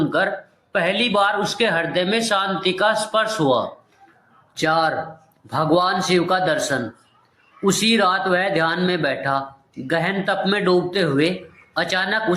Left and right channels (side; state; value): both; identical; correlation 1.00